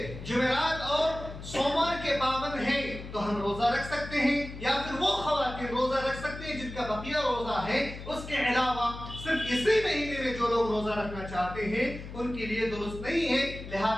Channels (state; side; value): noise; left; hum, 11 dB below the sound